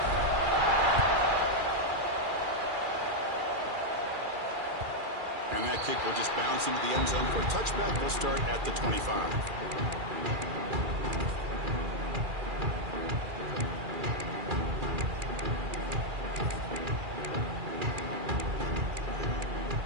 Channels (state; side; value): late; left; 2.4 ms